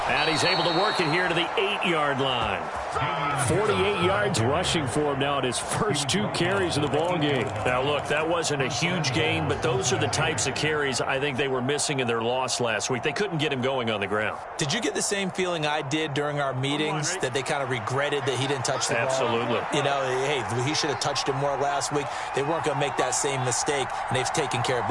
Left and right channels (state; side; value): identical; both; correlation 1.00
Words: And he's able to work it here to the 8-yard line. 48 yards rushing for him now at his first 2 carries of the ball game. Now, look, that wasn't a huge gain, but those are the types of carries I think they were missing in their loss last week. They couldn't get him going on the ground. Did you get the same feeling I did during our meetings, that they kind of regretted that he didn't touch the ball? Absolutely. Hey, he should have touched it more last week. They weren't going to make that same mistake, and they've taken care of